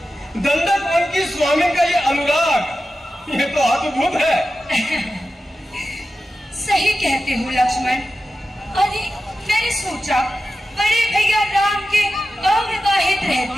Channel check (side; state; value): both; normal; correlation 0.93